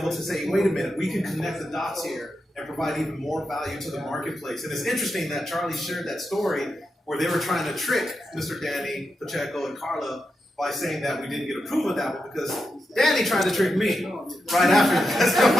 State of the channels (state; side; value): normal; both; correlation 0.87